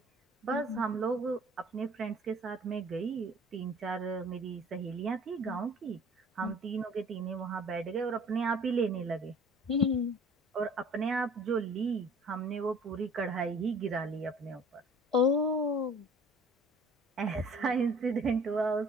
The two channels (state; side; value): normal; both; correlation 0.50